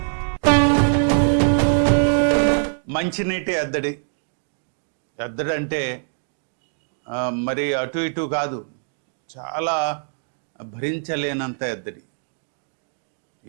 మంచినీటి ఎద్దడి అంటే మరి అటు ఇటు కాదు, చాలా భరించలేనంత ఎద్దడి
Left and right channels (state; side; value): silent; left; digital silence